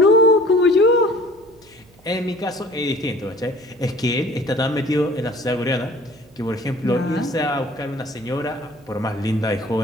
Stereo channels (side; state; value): right; noise; hum, 28 dB below the sound